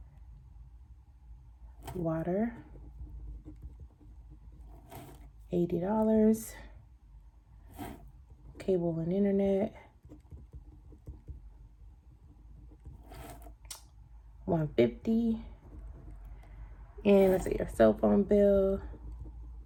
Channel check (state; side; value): identical; both; correlation 1.00